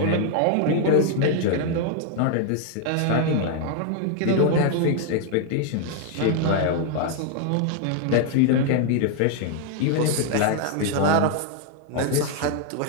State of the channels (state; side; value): different; both; correlation 0.00